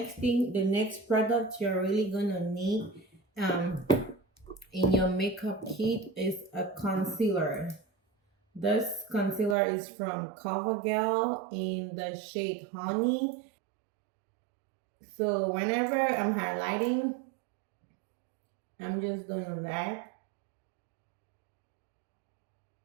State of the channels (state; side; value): drops out; left; at 9.6 s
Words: product you're really gonna need in your makeup kit is a concealer. This concealer is from CoverGirl in the shade Honey. So whenever I'm highlighting, I'm just doing that.